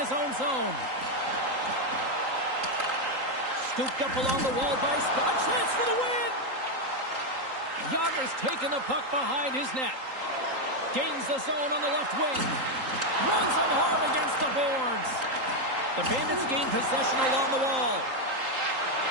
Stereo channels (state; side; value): late; left; 3.8 ms